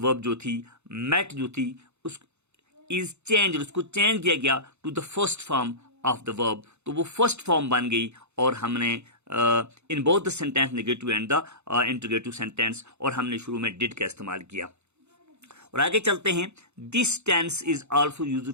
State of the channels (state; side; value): late; left; 0.81 ms